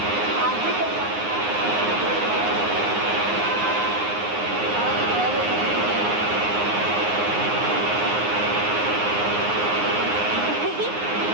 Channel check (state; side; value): late; left; 9.6 ms